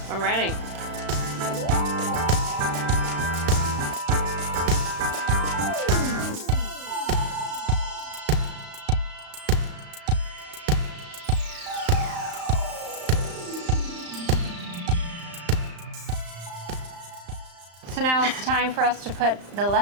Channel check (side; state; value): left; late; 35 ms